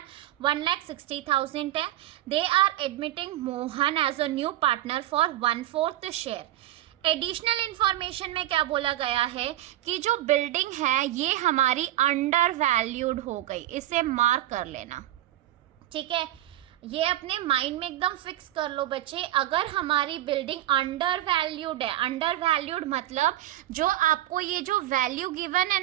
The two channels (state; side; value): quieter; left; 14.2 dB